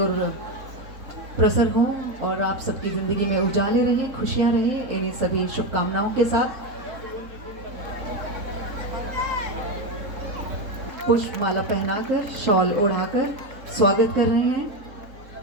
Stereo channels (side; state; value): left; late; 4.5 ms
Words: प्रसर हों और आप सबकी जिंदगी में उजाले रहे, खुशियां रहे। इन्हीं सभी शुभकामनाओं के साथ पुष्प माला पहनाकर शॉल ओढ़ाकर स्वागत कर रहे